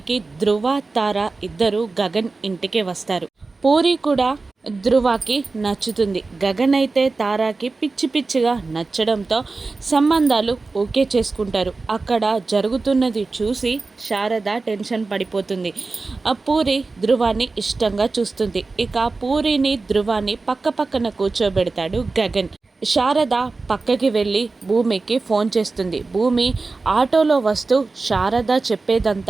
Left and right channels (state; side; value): quieter; left; 3.8 dB